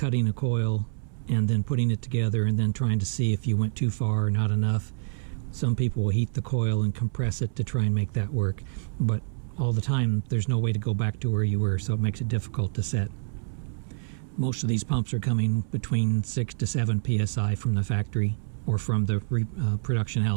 a coil and then putting it together and then trying to see if you went too far or not enough. Some people will heat the coil and compress it to try and make that work, but all the time there's no way to go back to where you were, so it makes it difficult to set. Most of these pumps are coming between 6 to 7 psi from the factory or from the production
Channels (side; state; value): left; silent; 60 dB below the other